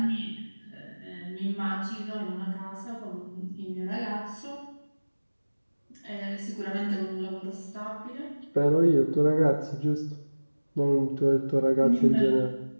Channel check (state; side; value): inverted; both; correlation -1.00